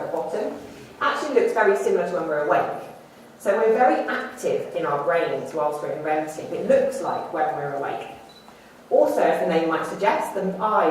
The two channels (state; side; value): identical; both; correlation 1.00